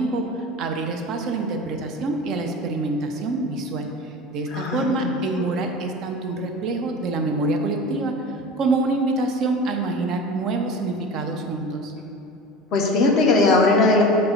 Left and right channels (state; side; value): normal; both; correlation 0.33